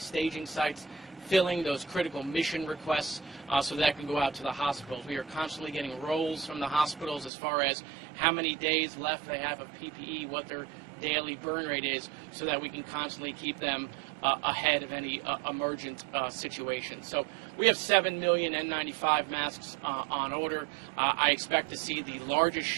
sites, filling those critical mission requests so that can go out to the hospitals. We are constantly getting rolls from the hospitals as far as how many days left they have of PPE, what their daily burn rate is, so that we can constantly keep them ahead of any emergent situations. So we have 7 million N95 masks on order. I expect to see the largest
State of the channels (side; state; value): left; drops out; at 7.3 s